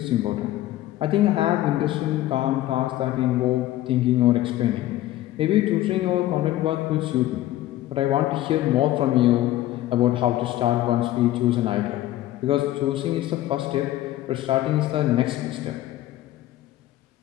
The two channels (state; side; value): quieter; right; 14.8 dB